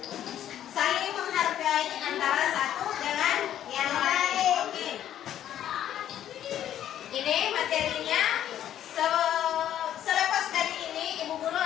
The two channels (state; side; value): quieter; right; 11.1 dB